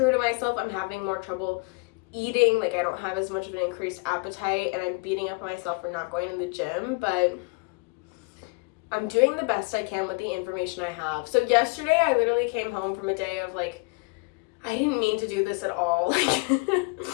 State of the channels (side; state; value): right; quieter; 30.5 dB